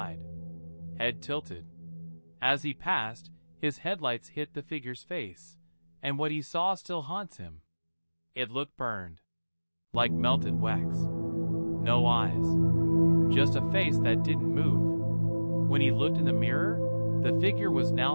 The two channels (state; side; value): inverted; both; correlation -1.00